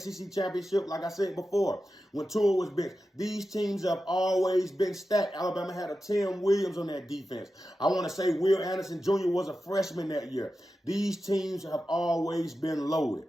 championship. Like I said before, when Tua was benched, these teams have always been stacked. Alabama had a Tim Williams on that defense. I want to say Will Anderson Jr. was a freshman that year. These teams have always been loaded,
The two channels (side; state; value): both; normal; correlation 0.92